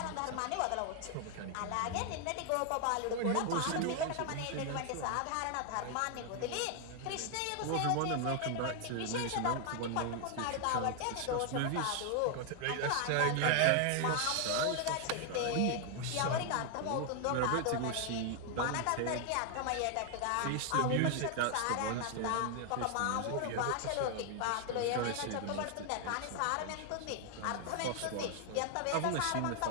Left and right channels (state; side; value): different; both; correlation 0.00